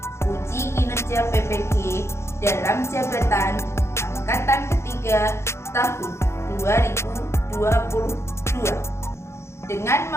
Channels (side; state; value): right; late; 0.13 ms